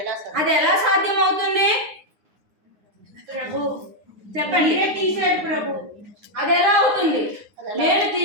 అది ఎలా సాధ్యం అవుతుంది? ప్రభు చెప్పండి. మీరే తీశారు ప్రభు. అది ఎలా అవుతుంది? నేను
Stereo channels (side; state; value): left; late; 9.7 ms